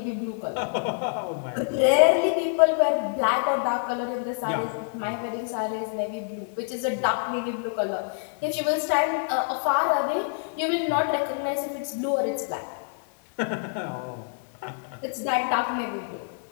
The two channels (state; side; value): silent; right; digital silence